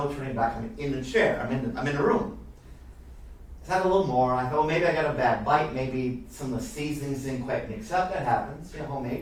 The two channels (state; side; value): identical; both; correlation 1.00